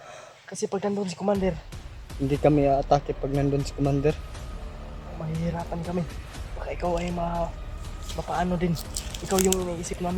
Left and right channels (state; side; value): identical; both; correlation 1.00